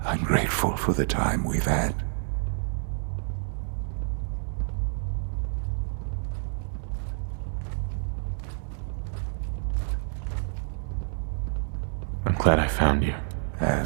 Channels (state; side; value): silent; left; 57 dB below the other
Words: I'm grateful for the time we've had. I'm glad I found you.